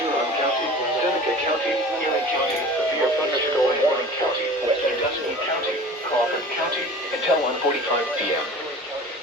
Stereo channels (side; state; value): both; normal; correlation 0.40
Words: Huron County, Seneca County, Erie County, severe thunderstorm warning county, Western Dusky County, Crawford County, until 1:45 p.m.